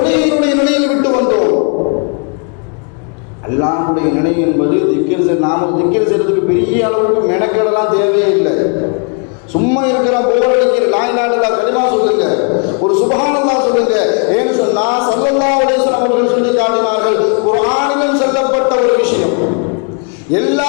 நிலையில் விட்டு வந்தோம். அல்லாஹ்வுடைய நிலை என்பது நாம திக்ர் செய்யறதுக்கு பெரிய அளவுக்கு மெனக்கெடலாம் தேவையே இல்லை. சும்மா இருக்கிற போர் அடிக்கிற லா இலாஹா இல்லல்லாஹ் கலிமா சொல்லுங்க, ஒரு சுப்ஹானல்லாஹ் சொல்லுங்க. ஏன்னு சொன்னா ஸல்லல்லாஹு அலைஹி வஸல்லம் அவர்கள் சொல்லி காட்டினார்கள், குர்ஆனிலும் சொல்லப்பட்ட ஒரு விஷயம்,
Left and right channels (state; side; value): quieter; right; 39.4 dB